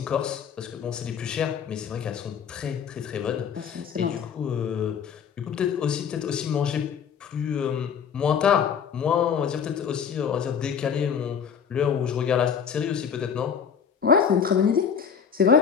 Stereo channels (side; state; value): right; quieter; 7.2 dB